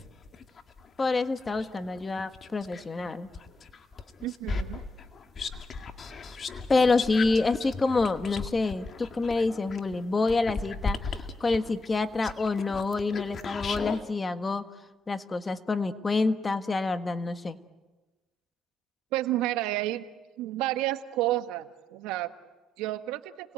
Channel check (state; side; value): normal; both; correlation 0.81